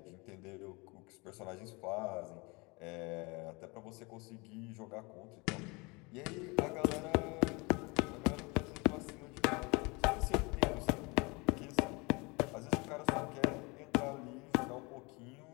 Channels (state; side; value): quieter; right; 27.3 dB